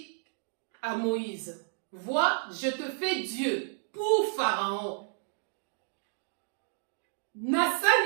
à Moïse, vois, je te fais Dieu pour Pharaon.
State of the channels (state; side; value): silent; left; 57 dB below the other